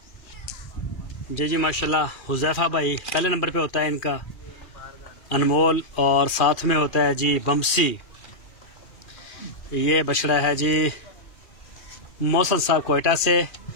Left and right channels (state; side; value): late; right; 2.4 ms